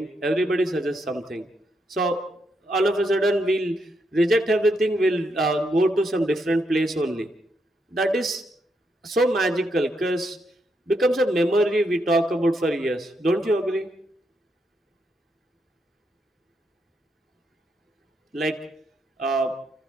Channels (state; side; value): normal; both; correlation 0.79